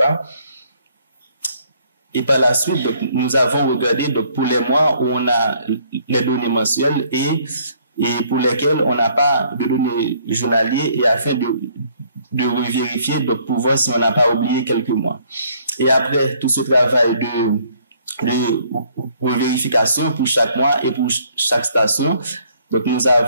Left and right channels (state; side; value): inverted; both; correlation -0.63